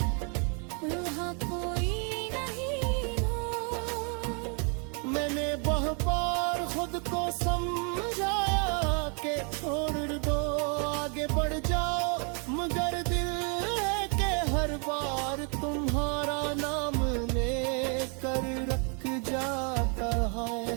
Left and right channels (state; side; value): quieter; left; 37.7 dB